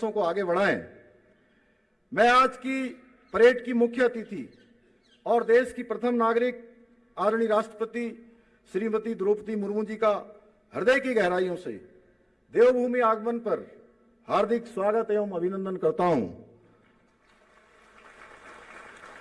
को आगे बढ़ाएं। मैं आज की परेड की मुख्य अतिथि और देश की प्रथम नागरिक आदरणीय राष्ट्रपति श्रीमती द्रौपदी मुर्मू जी का हृदय की गहराइयों से देवभूमि आगमन पर हार्दिक स्वागत एवं अभिनंदन करता हूं।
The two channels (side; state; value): both; identical; correlation 1.00